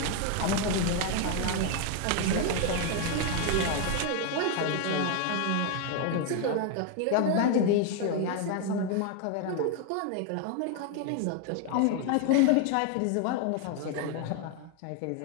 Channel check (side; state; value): both; different; correlation 0.01